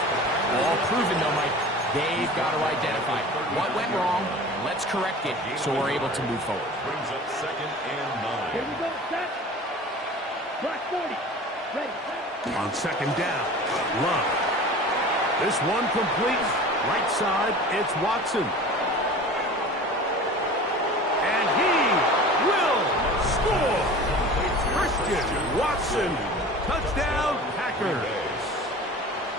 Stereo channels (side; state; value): both; normal; correlation 0.39